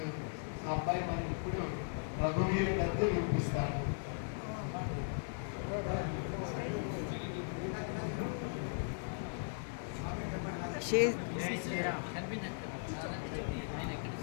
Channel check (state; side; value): silent; right; digital silence